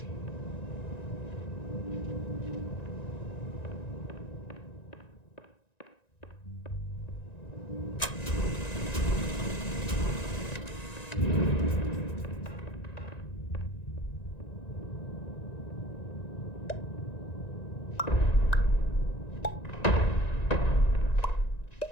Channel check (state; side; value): late; right; 1.9 ms